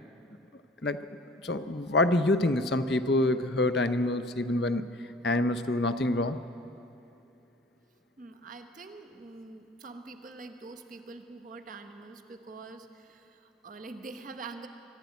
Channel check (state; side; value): normal; both; correlation 0.48